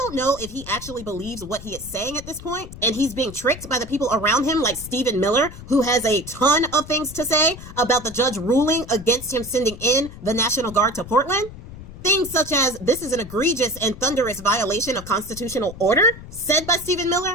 know if he actually believes what he is saying at this point, and he's being tricked by the people around him like Stephen Miller, who has a ton of things to say about the judge ruling against him sending in the National Guard to Portland. Things such as, this is an egregious and thunderous violation of constitutional order, said by Stephen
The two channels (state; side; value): noise; left; rumble, 14 dB below the sound